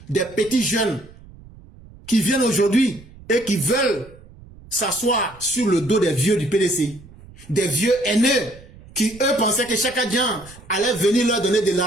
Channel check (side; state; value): right; noise; rumble, 21 dB below the sound